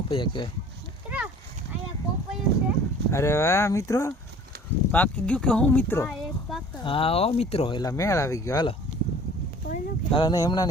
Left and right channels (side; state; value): both; normal; correlation 0.48